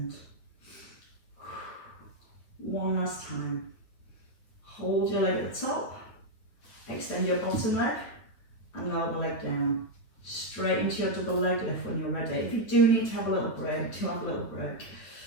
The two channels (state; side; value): late; right; 9.0 ms